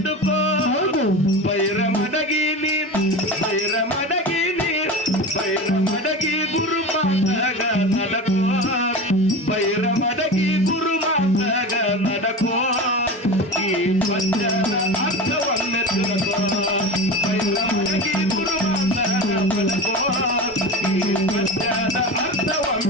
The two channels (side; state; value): both; normal; correlation 0.28